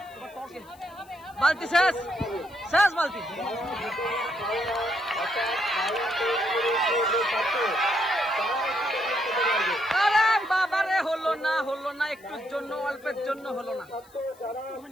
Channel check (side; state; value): left; noise; hiss, 27 dB below the sound